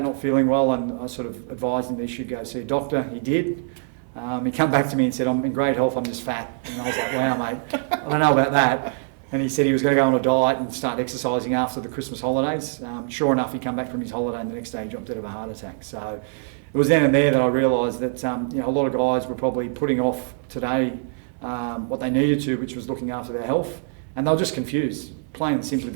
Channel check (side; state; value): left; silent; digital silence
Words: not feeling well, and I sort of advised him that he should go see a doctor. He did. He came back to me and said, "I'm in great health, I'm just fat." And I was like, "Wow, mate, I don't know about that." And he said he was going to go on a diet and start exercising after the Christmas holidays. Sure enough, he came back from his holiday and the next day he dropped dead of a heart attack. So it was then and there that I realised that a lot of guys were probably putting off today what they needed to, which was looking after their health. And they were just confused, plain and simply.